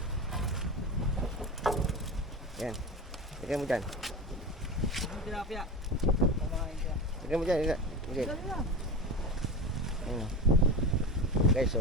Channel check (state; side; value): normal; both; correlation 0.26